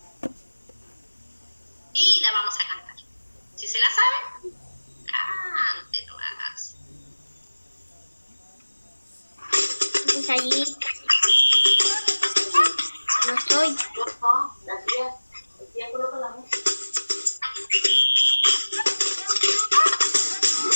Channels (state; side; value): inverted; both; correlation -1.00